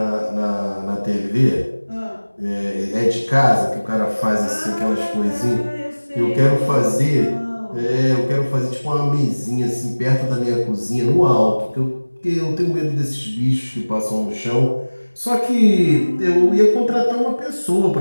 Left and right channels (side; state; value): both; inverted; correlation -1.00